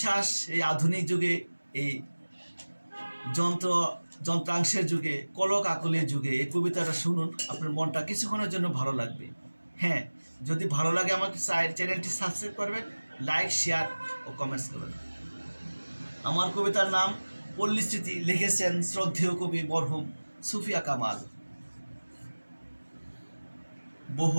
এই আধুনিক যুগে, এই যন্ত্রাংশের যুগে, কলক আকলের যুগে এই কবিতাটা শুনুন, আপনার মনটা কিছুক্ষণের জন্য ভালো লাগবে। হ্যাঁ, যদি ভালো লাগে আমাকে চ্যানেলটি সাবস্ক্রাইব করবেন, লাইক, শেয়ার ও কমেন্টস করবেন। আমার কবিতার নাম পল্লী স্মৃতি, লিখেছেন শ্রদ্ধেয় কবি মরহুম সুফিয়া কামাল।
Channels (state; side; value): inverted; both; correlation -1.00